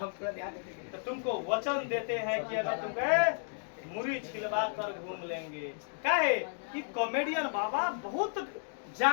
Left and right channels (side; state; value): right; silent; digital silence